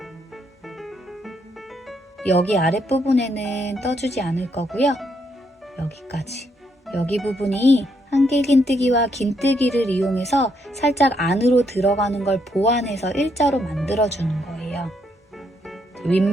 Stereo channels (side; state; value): both; normal; correlation 0.75